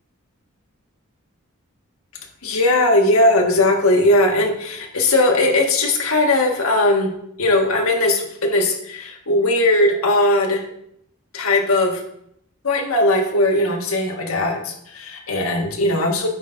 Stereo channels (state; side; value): normal; both; correlation -0.09